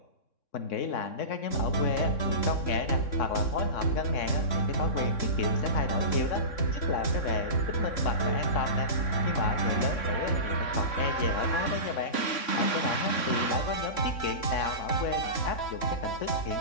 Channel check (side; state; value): right; late; 3.6 ms